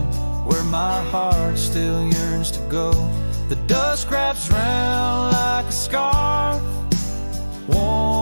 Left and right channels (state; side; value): inverted; both; correlation -1.00